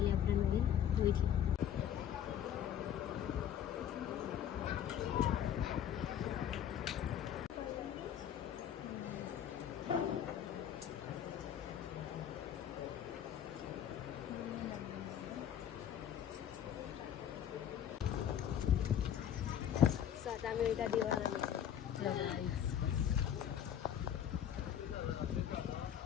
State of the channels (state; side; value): quieter; right; 9.7 dB